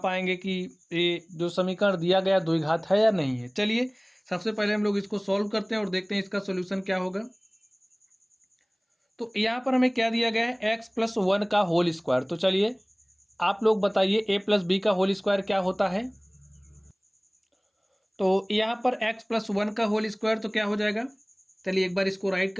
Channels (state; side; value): identical; both; correlation 1.00